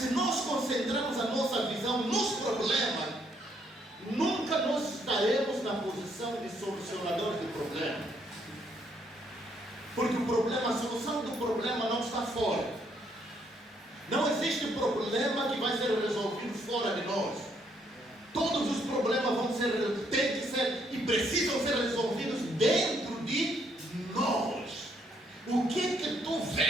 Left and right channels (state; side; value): normal; both; correlation 0.71